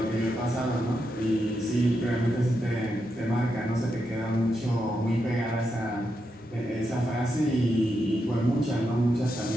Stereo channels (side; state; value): both; normal; correlation 0.84